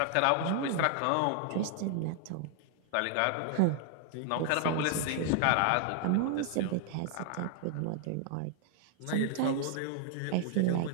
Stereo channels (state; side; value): different; both; correlation 0.00